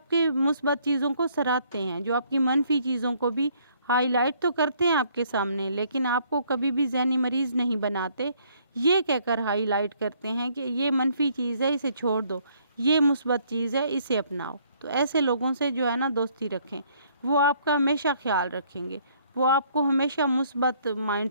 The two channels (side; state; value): both; inverted; correlation -0.65